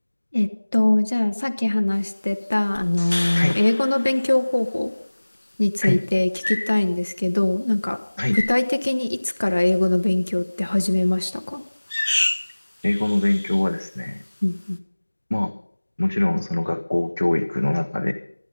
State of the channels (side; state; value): both; inverted; correlation -1.00